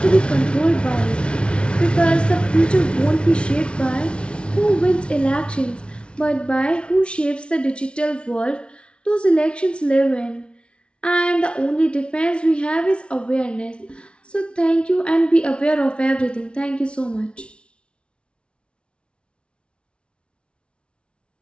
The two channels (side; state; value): right; late; 0.058 ms